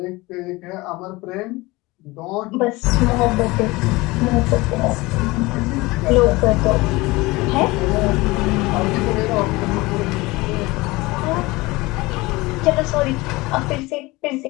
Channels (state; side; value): quieter; right; 21.9 dB